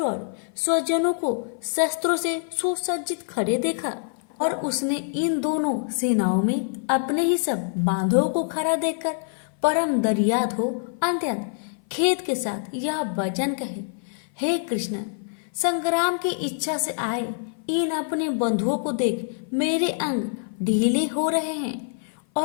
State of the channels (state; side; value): silent; right; 56 dB below the other